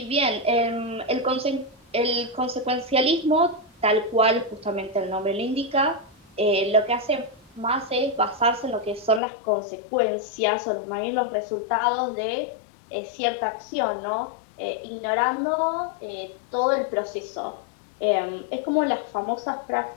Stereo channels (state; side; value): drops out; right; at 9.2 s